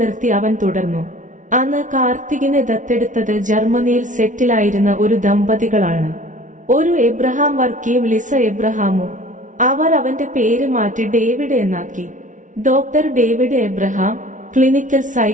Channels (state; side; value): late; left; 0.37 ms